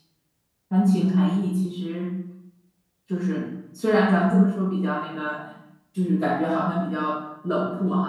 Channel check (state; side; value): identical; both; correlation 1.00